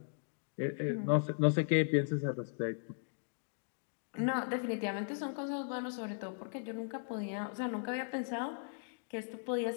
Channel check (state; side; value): silent; right; digital silence